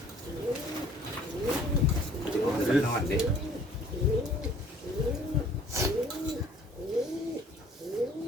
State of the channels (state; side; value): normal; both; correlation 0.55